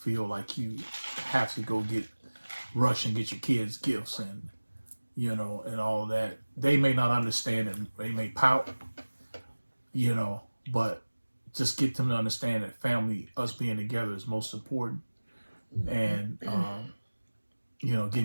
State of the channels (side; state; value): both; inverted; correlation -1.00